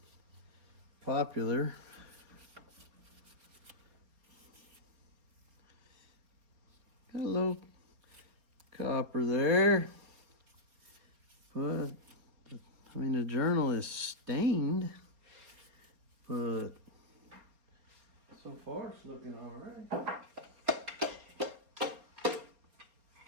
popular. Got a little copper there. But, I mean, the journal is stained. But, so far it's looking all right.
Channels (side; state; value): left; late; 4.3 ms